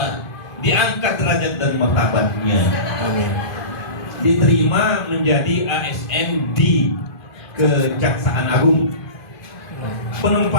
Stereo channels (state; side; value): late; right; 2.5 ms